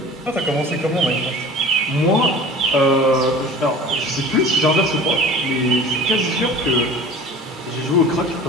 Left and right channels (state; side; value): normal; both; correlation 0.41